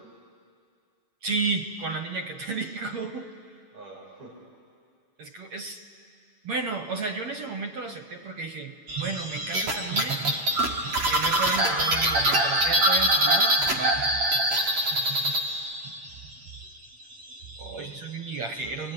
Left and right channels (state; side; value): late; left; 9.0 ms